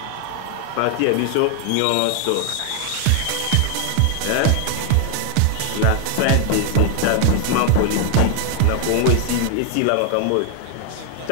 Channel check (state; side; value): different; both; correlation 0.00